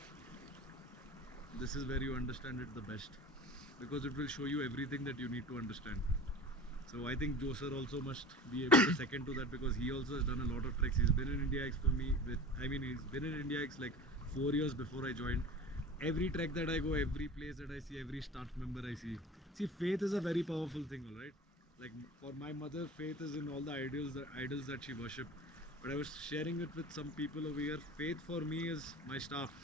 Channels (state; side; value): normal; both; correlation 0.37